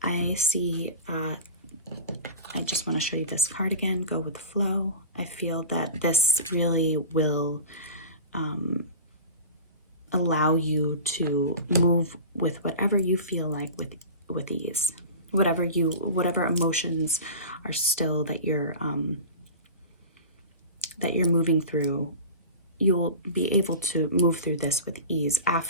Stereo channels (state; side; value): inverted; both; correlation -0.32